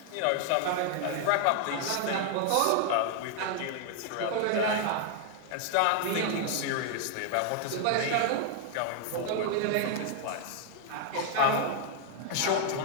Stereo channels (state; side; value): different; both; correlation 0.00